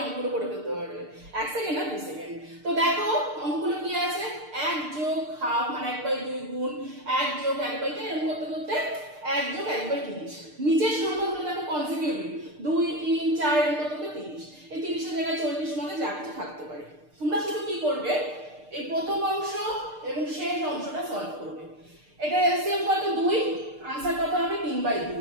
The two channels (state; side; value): late; left; 6.6 ms